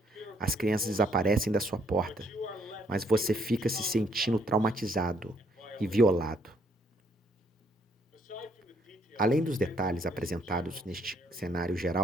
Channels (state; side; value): normal; both; correlation 0.69